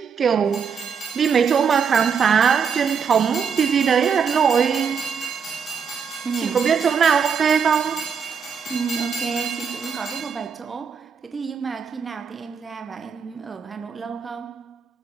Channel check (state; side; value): quieter; left; 6.6 dB